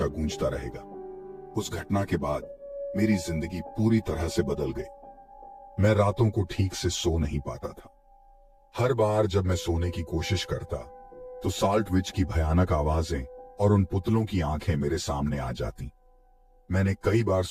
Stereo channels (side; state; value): both; identical; correlation 1.00